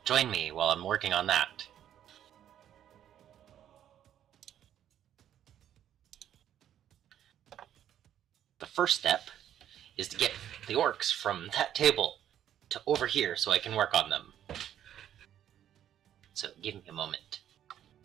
join me while I'm working on that. The first step is to get the orcs from that table to over here so I can work on them. So, give me a moment.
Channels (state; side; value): quieter; left; 10.6 dB